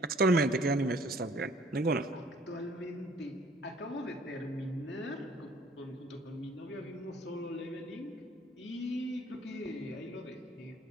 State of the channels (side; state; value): both; normal; correlation 0.57